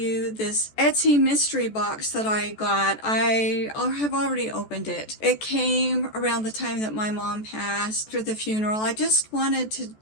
this Etsy mystery box that I got. I have already opened it. It came around the time that my mom passed after the funeral. I just wanted to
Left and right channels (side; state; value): right; late; 14 ms